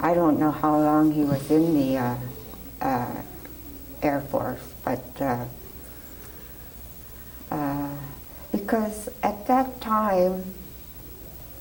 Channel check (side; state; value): both; identical; correlation 1.00